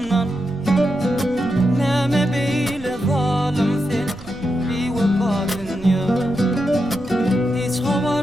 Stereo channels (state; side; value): noise; right; rumble, 17 dB below the sound